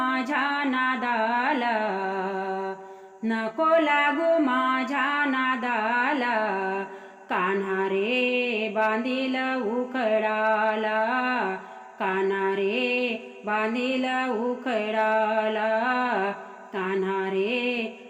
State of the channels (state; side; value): identical; both; correlation 1.00